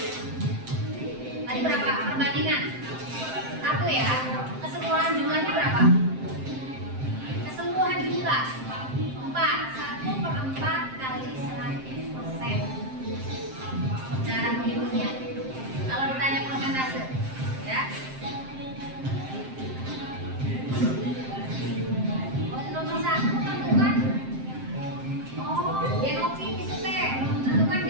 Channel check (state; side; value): late; left; 7.6 ms